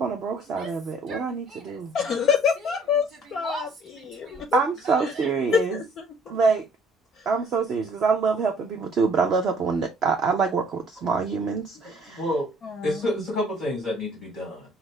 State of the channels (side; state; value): both; normal; correlation 0.58